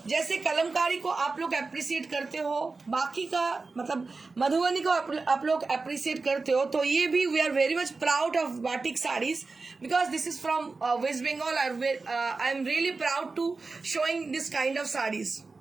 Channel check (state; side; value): quieter; left; 4.0 dB